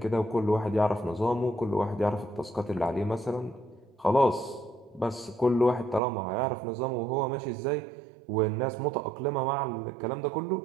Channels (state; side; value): drops out; left; at 6.0 s